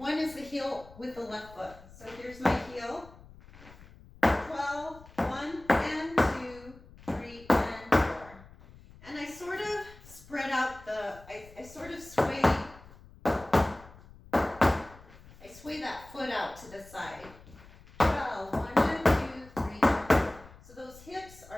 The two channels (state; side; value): noise; left; rumble, 21 dB below the sound